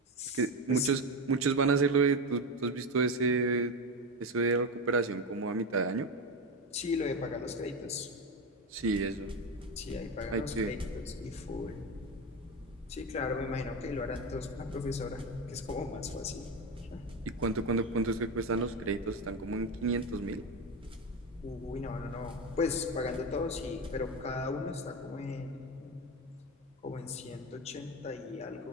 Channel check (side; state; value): both; normal; correlation 0.17